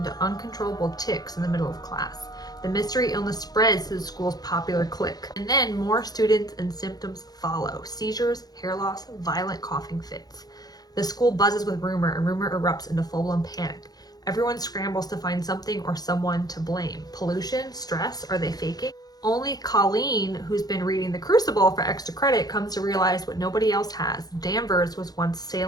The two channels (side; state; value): right; late; 0.19 ms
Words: uncontrollable tics in the middle of class. The mystery illness spreads to the school's popular clique. And then more students and symptoms follow. Seizures, hair loss, violent coughing fits. The school buzzes with rumor, and rumor erupts into full-blown panic. Everyone scrambles to find something or someone to blame. Pollution, stress, are they faking? Only Colleen, who's been reading The Crucible for extra credit, comes to realize what nobody else has. Danvers was once